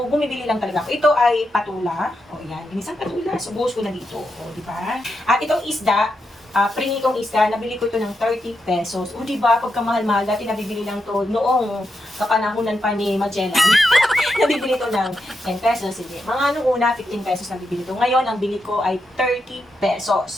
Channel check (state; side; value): normal; both; correlation 0.85